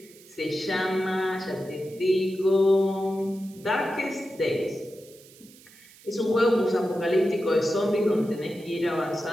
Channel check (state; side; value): noise; right; hiss, 24 dB below the sound